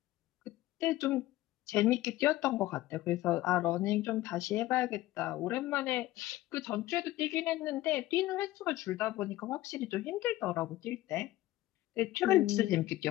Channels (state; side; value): quieter; right; 16.4 dB